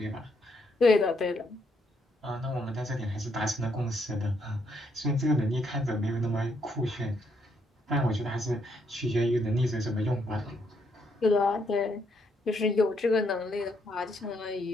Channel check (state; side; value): normal; both; correlation 0.74